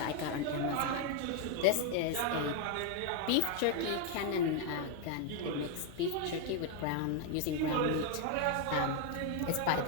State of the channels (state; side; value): different; both; correlation 0.01